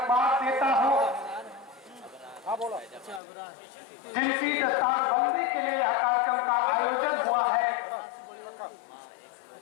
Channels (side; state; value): right; drops out; at 3.2 s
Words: देता हूँ जिनकी दस्तारबंदी के लिए यह कार्यक्रम का आयोजन हुआ है।